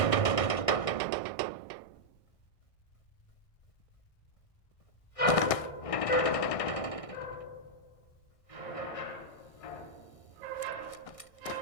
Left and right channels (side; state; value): right; late; 1.6 ms